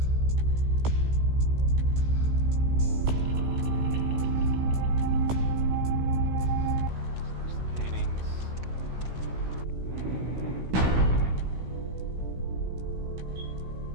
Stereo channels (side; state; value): left; late; 16 ms